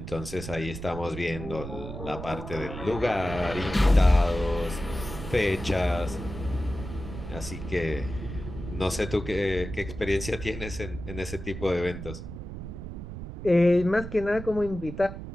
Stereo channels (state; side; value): noise; right; rumble, 9 dB below the sound